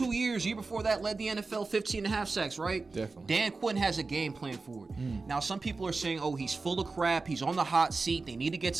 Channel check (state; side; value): quieter; left; 3.9 dB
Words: years. Year before that led the NFL 15 and a half sacks, right? Definitely. Dan Quinn has a game plan for it. Now, some people are saying, oh, he's full of crap. He's on the hot seat. They need to get